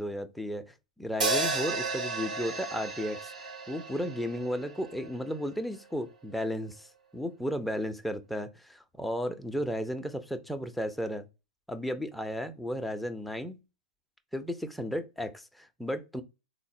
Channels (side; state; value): both; normal; correlation 0.63